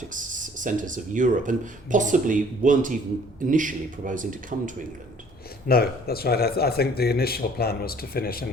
centres of Europe, and possibly weren't even initially proposing to come to England. No, that's right. I think the initial plan was to finish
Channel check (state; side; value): normal; both; correlation 0.55